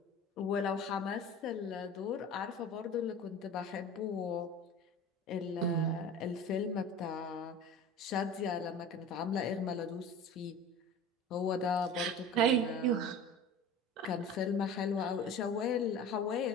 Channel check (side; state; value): both; normal; correlation 0.37